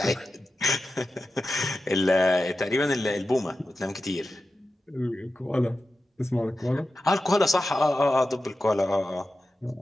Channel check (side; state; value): both; normal; correlation 0.92